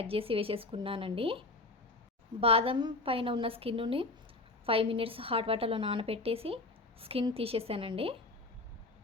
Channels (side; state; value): right; quieter; 3.1 dB